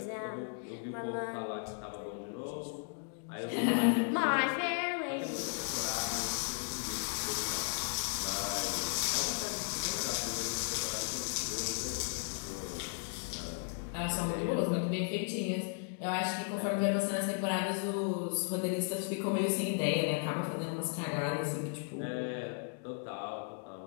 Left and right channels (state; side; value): silent; right; 54 dB below the other